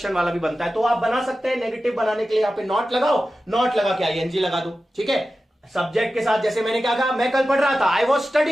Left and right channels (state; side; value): normal; both; correlation 0.93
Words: वाला भी बनता है, तो आप बना सकते हैं। नेगेटिव बनाने के लिए यहां पे नॉट लगाओ, नॉट लगा के आईएनजी लगा दो, ठीक है। सब्जेक्ट के साथ, जैसे मैंने क्या कहा, मैं कल पढ़ रहा था, आई वॉज